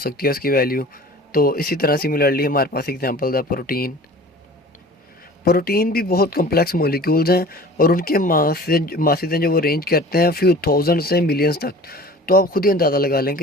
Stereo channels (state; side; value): normal; both; correlation 0.43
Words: है उसकी वैल्यू। तो इसी तरह सिमिलरली हमारे पास एग्जांपल है प्रोटीन। प्रोटीन भी बहुत कम्प्लेक्स मॉलिक्यूल्स हैं और उनके मासेज हैं जो वो रेंज करते हैं फ्यू थाउजेंड से मिलियंस तक। तो आप खुद ही अंदाज़ा लगा लें